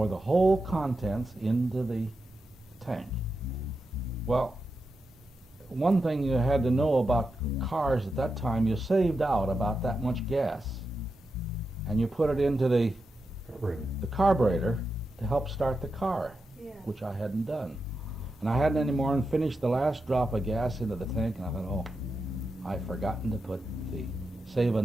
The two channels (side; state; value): both; normal; correlation 0.88